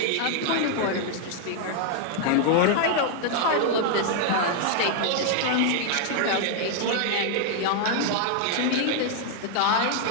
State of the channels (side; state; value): both; different; correlation 0.00